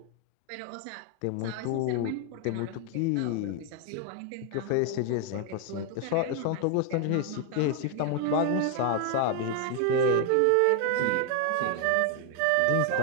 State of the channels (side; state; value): both; different; correlation 0.01